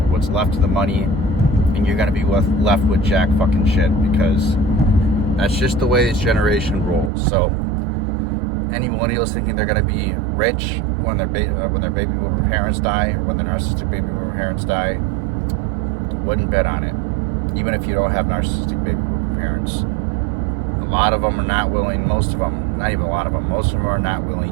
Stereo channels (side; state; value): left; drops out; at 7.1 s